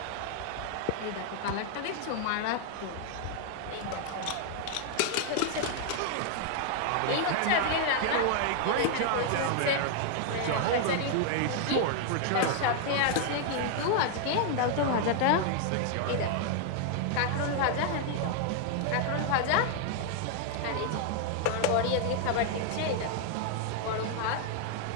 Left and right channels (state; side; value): different; both; correlation 0.00